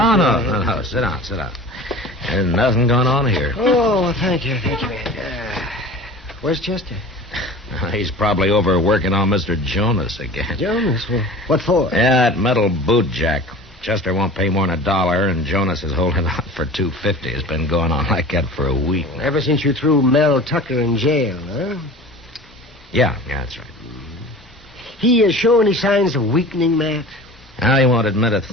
just- Sit down. There's nothing going on here. Oh, thank you, Matt. Where's Chester? He's probably over working on Mr. Jonas again. Jonas? Well, what for? Yeah, that metal boot jack. Chester won't pay more than $1, and Jonas is holding out for $2.50. It's been going on like that for a week. Ever since you threw Mel Tucker in jail, huh? Yeah, that's right. He show any signs of weakening, Matt? Now, he won't admit a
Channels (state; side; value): normal; both; correlation 0.39